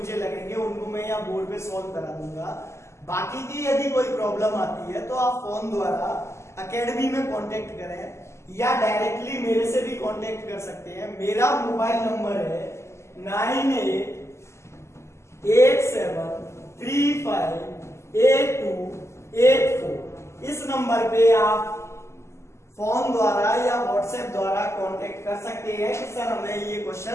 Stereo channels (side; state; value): right; late; 0.13 ms